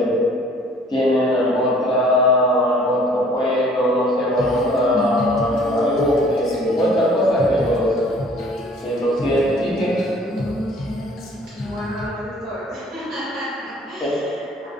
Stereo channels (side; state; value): both; normal; correlation 0.54